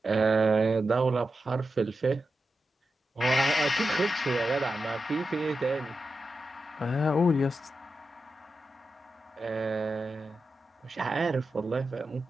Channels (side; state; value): both; normal; correlation 0.90